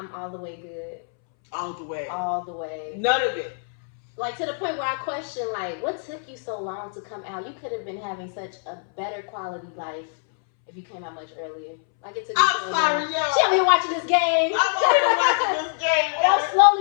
all the way good. All the way. All the way. None of it. Like, to the point where I question, like, what took you so long to come out? You could have been having such a better quality life if you came out much earlier. Like, it took you I'm sorry, yo. She over here watching this game. I'm over here watching this game. And I'm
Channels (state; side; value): silent; right; 62 dB below the other